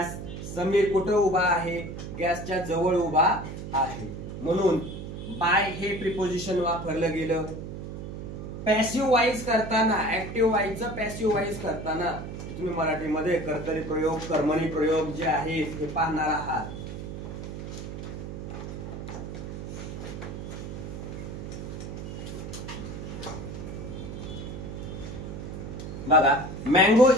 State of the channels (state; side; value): noise; right; hum, 8 dB below the sound